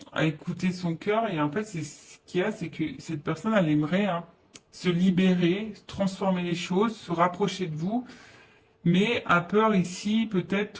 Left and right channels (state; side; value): identical; both; correlation 1.00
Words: écouter son cœur. Et en fait, c'est ce qu'il y a, c'est que cette personne, elle aimerait hein, se libérer, transformer les choses, se rapprocher de vous, mais a peur ici